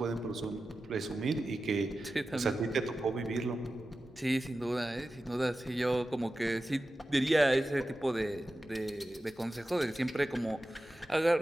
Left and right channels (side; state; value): both; normal; correlation 0.93